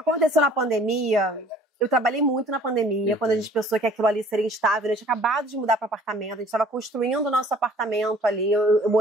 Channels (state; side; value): normal; both; correlation 0.53